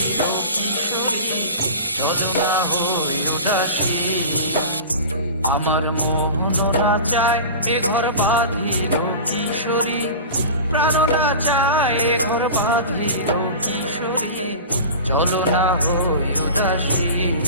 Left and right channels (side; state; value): both; inverted; correlation -0.33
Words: কিশোরী, চলো না হই উদাসী। আমার মোহন না চায় এ ঘর বাঁধিল কিশোরী, প্রাণ না চায় এ ঘর বাঁধিল কিশোরী, চলো না হই উদাসী,